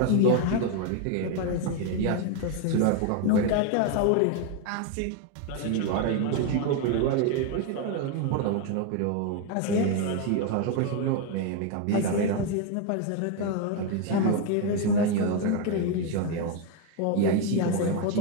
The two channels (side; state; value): both; different; correlation 0.01